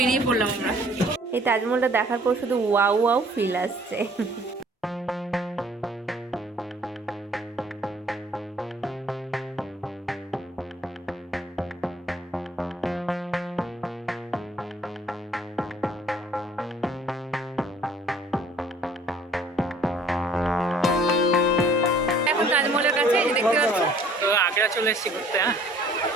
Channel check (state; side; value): normal; both; correlation 0.56